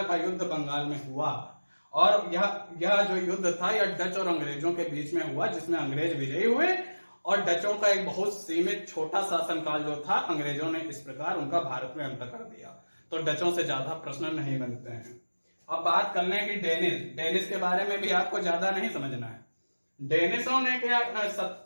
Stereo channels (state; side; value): inverted; both; correlation -1.00